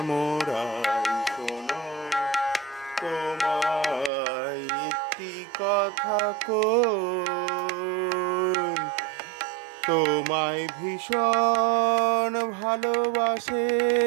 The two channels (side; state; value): left; drops out; at 4.1 s